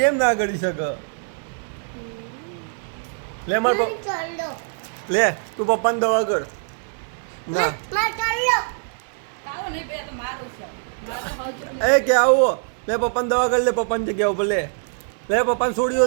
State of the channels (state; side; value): silent; left; digital silence